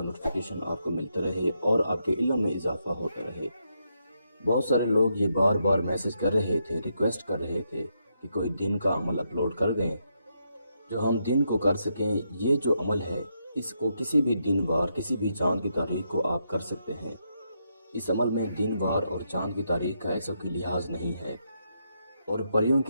नोटिफिकेशन आपको मिलता रहे और आपके इल्म में इजाफा होता रहे। बहुत सारे लोग ये बार बार मैसेज कर रहे थे, रिक्वेस्ट कर रहे थे कि कोई दिन का अमल अपलोड कर दें जो हम दिन को कर सकें। ये जो अमल है इसको किसी भी दिन वार, किसी भी चांद की तारीख को आप कर सकते हैं। इस अमल में दिन वार और चांद की तारीख का ऐसा कोई लिहाज नहीं है और परियों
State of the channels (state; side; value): inverted; both; correlation -0.80